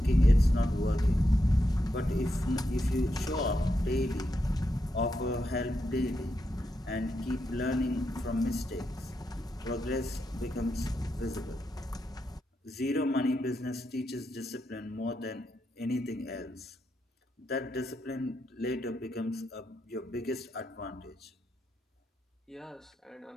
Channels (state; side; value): normal; both; correlation 0.84